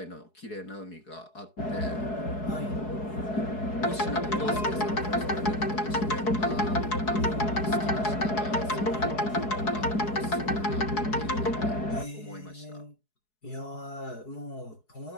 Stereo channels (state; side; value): late; right; 4.7 ms